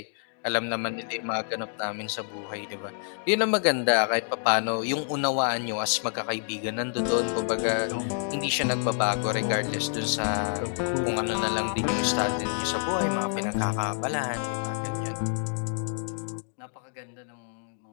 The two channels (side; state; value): right; silent; digital silence